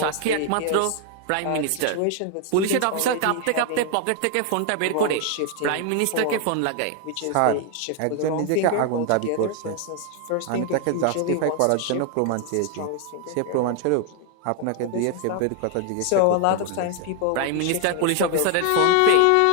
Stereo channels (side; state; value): both; different; correlation 0.00